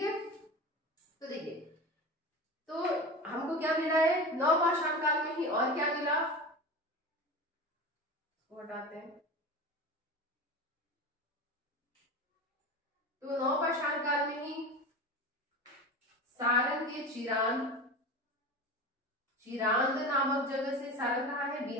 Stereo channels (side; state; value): both; normal; correlation 0.29